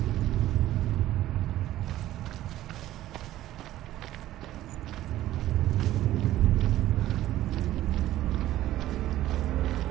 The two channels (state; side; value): quieter; left; 14.2 dB